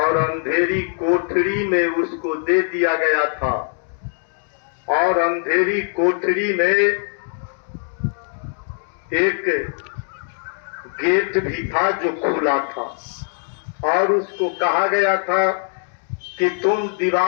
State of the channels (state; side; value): silent; right; 58 dB below the other